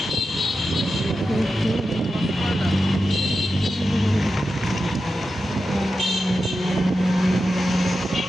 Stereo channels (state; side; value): normal; both; correlation 0.91